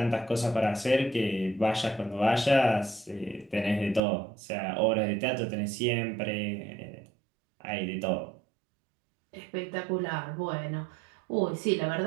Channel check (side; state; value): left; drops out; at 4.0 s